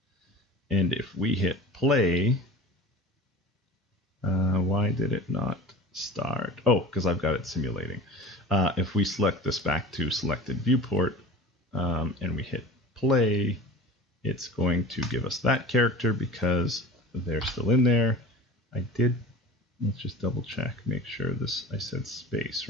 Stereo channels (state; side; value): normal; both; correlation 0.38